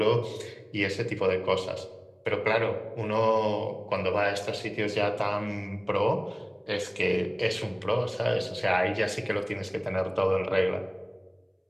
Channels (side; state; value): both; identical; correlation 1.00